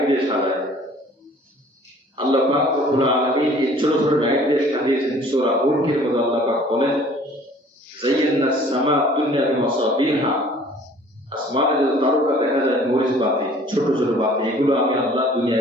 দিয়ে সাজায়। আল্লাহ পাক রব্বুল আলামিন এই ছোট ছোট লাইট দিয়ে সাজিয়েছেন। সূরা মুলকের মধ্যে আল্লাহ পাক বলেন যায়্যানাস সামা দুনিয়া বিমাসাবিহা, আসমানে যে তারকা দেখা যায়, মরিচ বাতি, ছোট ছোট বাতি, এগুলো আমি আল্লাহ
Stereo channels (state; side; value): normal; both; correlation 0.52